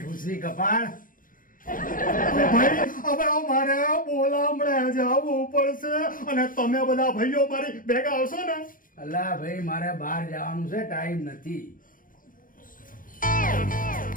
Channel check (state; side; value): late; right; 0.40 ms